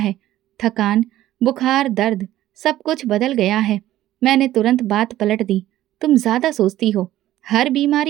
थकान, बुखार, दर्द, सब कुछ बदल गया है। मैंने तुरंत बात पलट दी। तुम ज्यादा सोचती हो, हर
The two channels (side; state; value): left; quieter; 14.0 dB